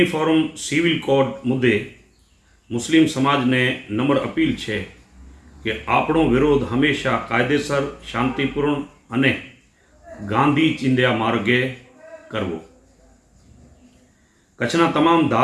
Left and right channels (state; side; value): identical; both; correlation 1.00